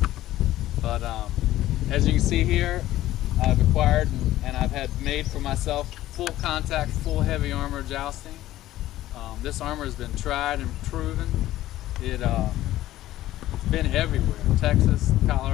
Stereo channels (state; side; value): quieter; right; 14.7 dB